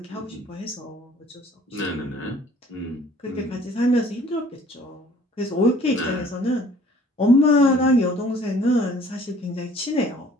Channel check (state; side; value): normal; both; correlation 0.54